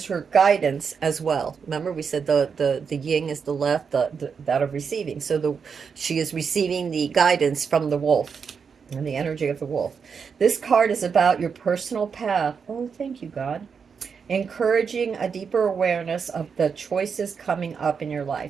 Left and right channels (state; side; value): quieter; left; 6.1 dB